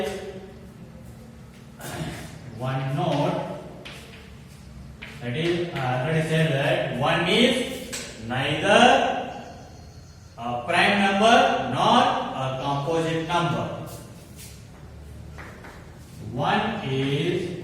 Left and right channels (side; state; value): both; identical; correlation 1.00